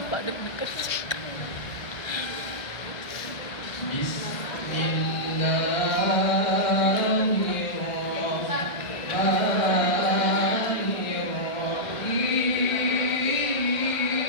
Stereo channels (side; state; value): right; late; 1.7 ms